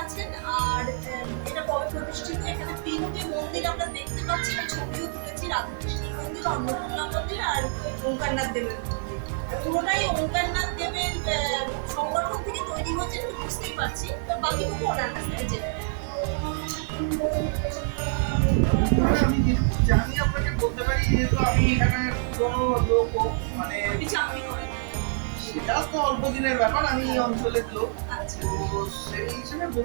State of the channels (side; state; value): left; silent; digital silence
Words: আছেন, আর এটা কবে প্রতিষ্ঠিত। এখানে তিনটে মন্দির আমরা দেখতে পাচ্ছি, আমি ছবিও তুলেছি, রাধাকৃষ্ণের মন্দির, অন্নপূর্ণা মন্দির আর ওঙ্কারনাথ দেবের মন্দির। পুরোটাই ওঙ্কারনাথ দেবের সংগঠন থেকে তৈরি হয়েছে, একটু বুঝতেই পারছি। তো বাকিটুকু ওনার কাছ থেকে জেনে আমি যেটুকু জানি আপনাকে বলতে পারি, যেহেতু আমি এখানে কোনো লোক মানে চাকরি করেন, সেটা তো অল্প দিনের ব্যাপার, আমি এই অঞ্চলের লোক। তো সেই হিসেবে